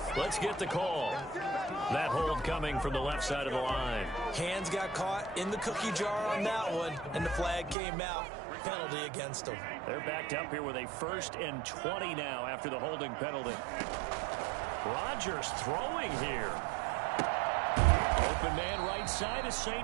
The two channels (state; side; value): drops out; left; at 7.8 s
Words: Let's get the call. That hold coming from the left side of the line. Hands got caught in the cookie jar on that one, and the flag came out. Penalty against them. They're backed up here with a 1st and 20 now after the holding penalty. Rodgers throwing here. Open man right side is